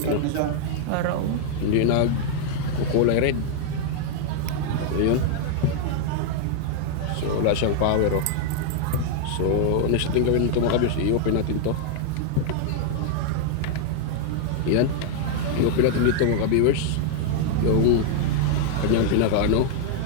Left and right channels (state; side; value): different; both; correlation 0.00